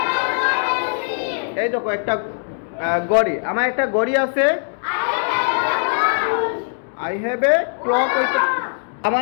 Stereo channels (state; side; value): silent; right; digital silence